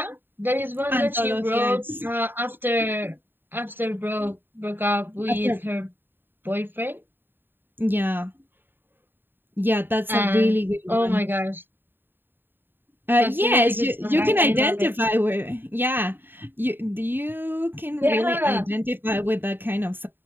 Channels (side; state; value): left; late; 0.097 ms